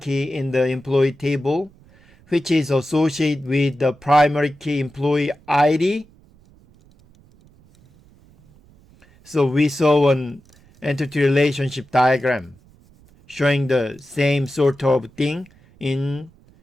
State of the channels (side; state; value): right; noise; rumble, 29 dB below the sound